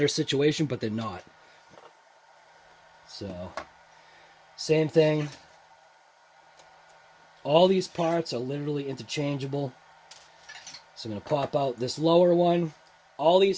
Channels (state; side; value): identical; both; correlation 1.00